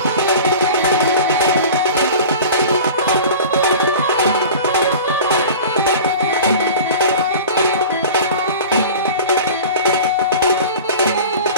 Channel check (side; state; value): both; inverted; correlation -0.37